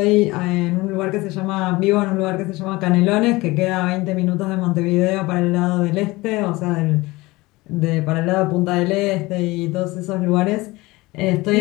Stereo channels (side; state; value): right; quieter; 21.3 dB